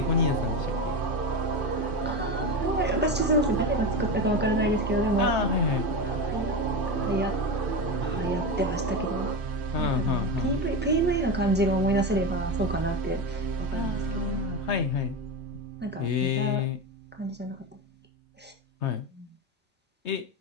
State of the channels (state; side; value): normal; both; correlation 0.19